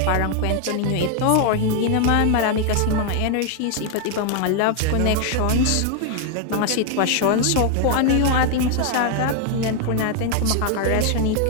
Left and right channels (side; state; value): both; different; correlation 0.01